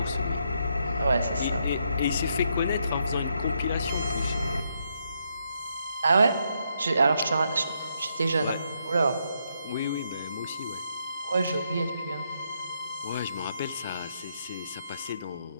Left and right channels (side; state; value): both; inverted; correlation -0.77